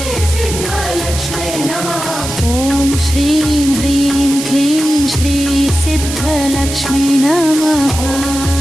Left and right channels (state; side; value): noise; right; hiss, 7 dB below the sound